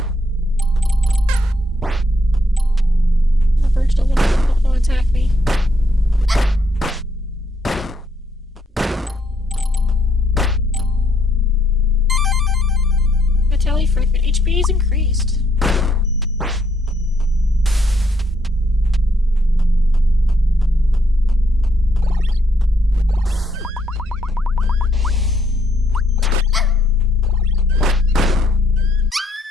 The birds don't want to attack me. Vitality fragment. HP is increased.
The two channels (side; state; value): both; normal; correlation 0.73